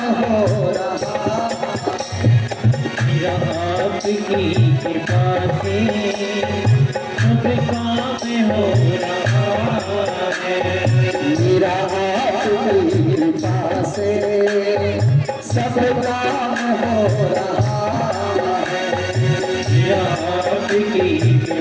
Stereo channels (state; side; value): identical; both; correlation 1.00